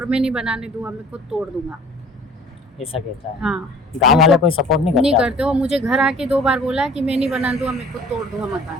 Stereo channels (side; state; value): both; normal; correlation 0.49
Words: मैं नहीं बनाने दूंगा, मैं खुद तोड़ दूंगा, ऐसा कहता है। हाँ। गांव वाले कोई सपोर्ट नहीं करते? नहीं करते। वो मुझे घर आके 2 बार बोला कि मैं नहीं बना दूंगा, मैं खुद तोड़ दूंगा